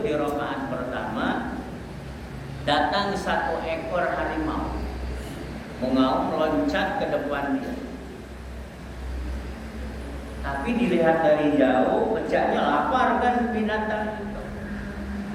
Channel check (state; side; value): identical; both; correlation 1.00